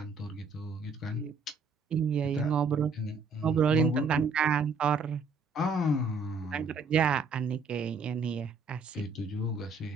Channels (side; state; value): left; quieter; 4.1 dB